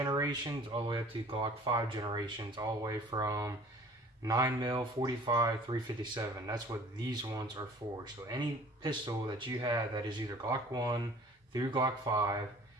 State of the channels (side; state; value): both; normal; correlation 0.48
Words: all the way up to Glock 5 generations, all the way from 9mm, 45, 357. That's what these ones are for. So any pistol that you have that is either Glock 1 through Glock 5